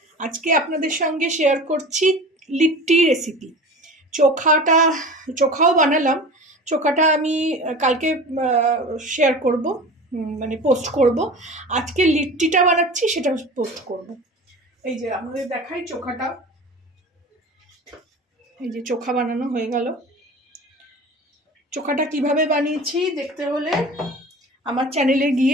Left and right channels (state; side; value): normal; both; correlation 0.36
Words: আজকে আপনাদের সঙ্গে শেয়ার করছি লিট্টি রেসিপি। চোখাও বানালাম। চোখাটা আমি কালকে শেয়ার করব, মানে পোস্ট করব। আজকে লিট্টিটা বানাচ্ছি, সেটা পোস্ট করব। এই যে আমাদের দেখাই চোখাটা। এই যে চোখা বানানো হয়ে গেল। চোখাটা কিভাবে বানিয়েছি দেখতে হলে আমার চ্যানেলে